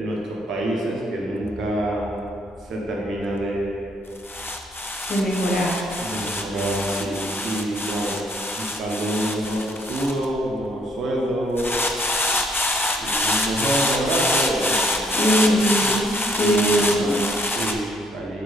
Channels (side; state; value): both; normal; correlation 0.68